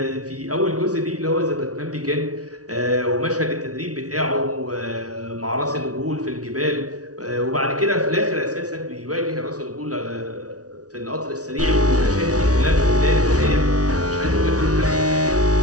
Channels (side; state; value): left; late; 0.68 ms